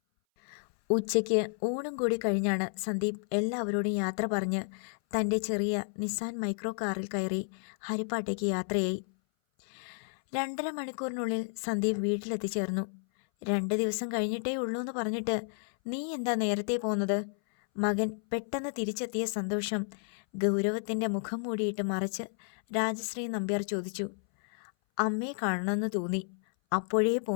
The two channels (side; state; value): right; silent; 57 dB below the other